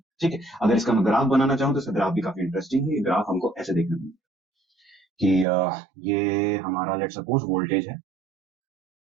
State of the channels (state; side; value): drops out; left; at 5.5 s